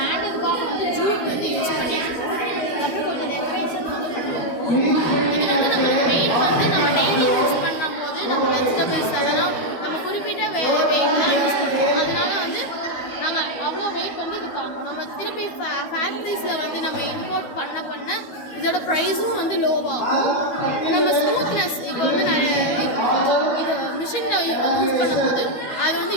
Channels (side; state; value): right; late; 13 ms